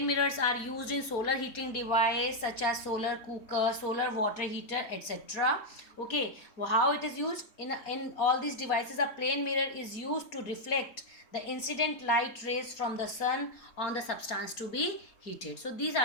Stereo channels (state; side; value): late; right; 4.2 ms